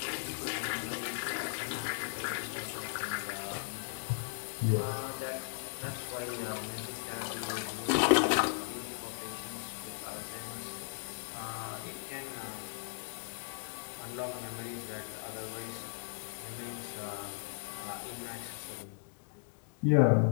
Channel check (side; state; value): right; silent; digital silence